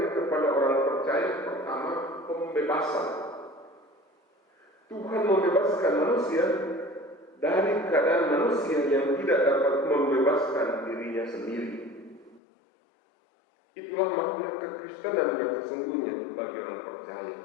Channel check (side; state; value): right; drops out; at 12.4 s